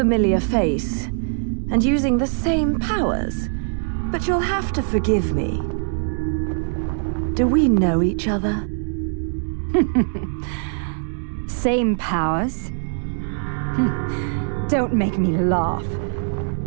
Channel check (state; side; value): silent; left; digital silence